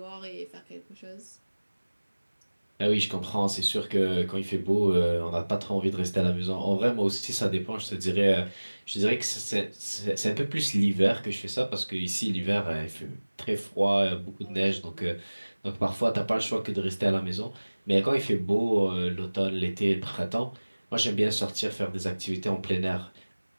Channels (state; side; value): inverted; both; correlation -1.00